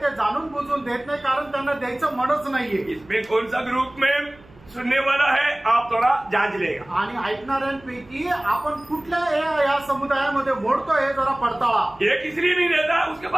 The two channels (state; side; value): noise; right; hum, 25 dB below the sound